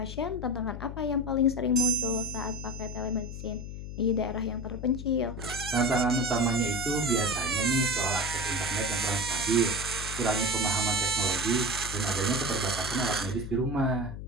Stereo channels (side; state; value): left; noise; hum, 8 dB below the sound